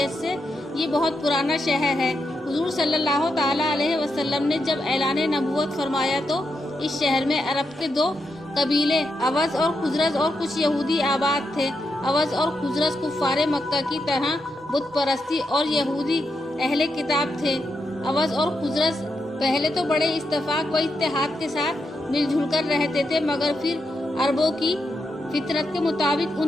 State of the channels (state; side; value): normal; both; correlation 0.84